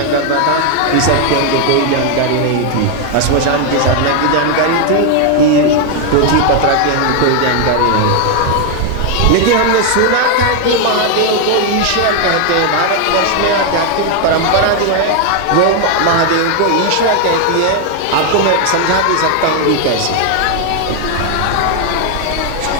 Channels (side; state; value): both; different; correlation 0.01